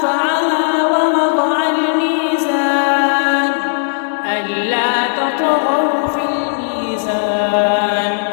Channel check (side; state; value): right; silent; digital silence